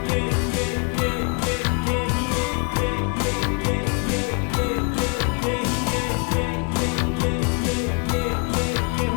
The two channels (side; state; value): right; quieter; 33.7 dB